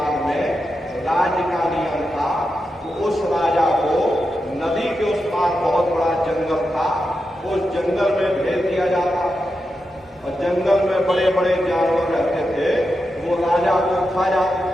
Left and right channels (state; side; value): normal; both; correlation 0.88